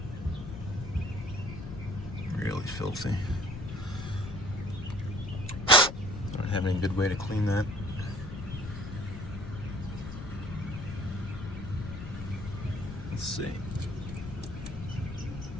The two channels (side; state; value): left; noise; rumble, 8 dB below the sound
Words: Really filthy. I don't have any good way to clean that. Let's see.